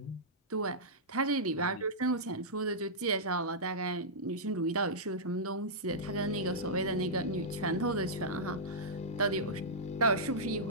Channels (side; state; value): both; normal; correlation -0.12